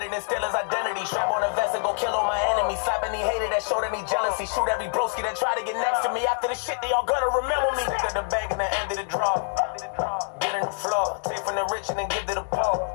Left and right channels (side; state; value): right; silent; digital silence